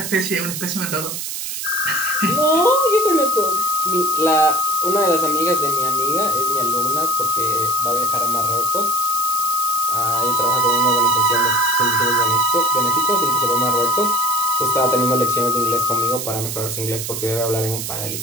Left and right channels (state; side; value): noise; right; hiss, 5 dB below the sound